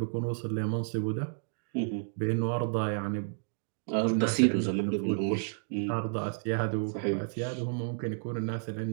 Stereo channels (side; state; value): left; silent; digital silence